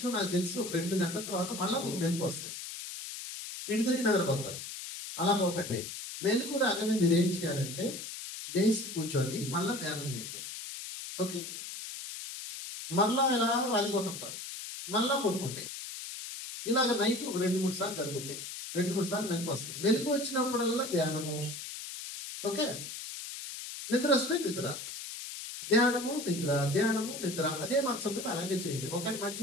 నాకు తెలిసి ఒక 2 గంటల తర్వాత మళ్ళీ మీకు మెలకు వస్తాయి, ఇంటి తిరిగి నిద్రపోతారు. అలా పోకండి. మెలకు రాగానే మీరు ఏం చేయాలంటే లేచి కూర్చొని మళ్ళీ ధ్యానం చేయండి. ఓకే, మళ్ళా ఇలా వాలిపోతుంటారు, మళ్ళా పడుకుంటే ఇలాగ నైట్ ఒక 2-3 సార్లు జరుగుతాయి. 2-3 సార్లు మెలకు వస్తుంది. మెలకు వచ్చినప్పుడల్లా ధ్యానము. ఓకే, నిద్ర వస్తే నిద్ర, ధ్యానము నిద్ర, ధ్యానము నిద్ర. అదే మంచం మీద అలాగే చేయండి. ఒకటి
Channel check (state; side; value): noise; left; hiss, 8 dB below the sound